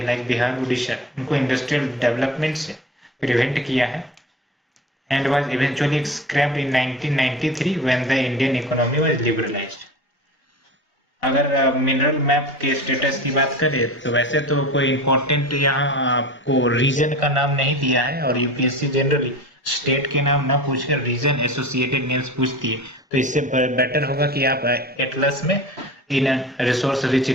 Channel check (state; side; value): normal; both; correlation 0.34